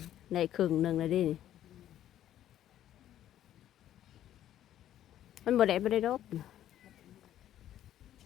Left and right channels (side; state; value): right; quieter; 11.8 dB